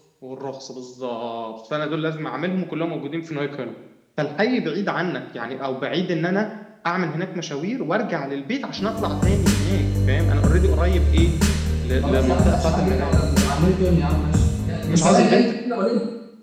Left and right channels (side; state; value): both; identical; correlation 1.00